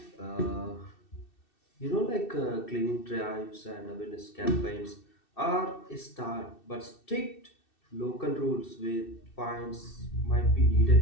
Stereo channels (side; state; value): right; late; 2.6 ms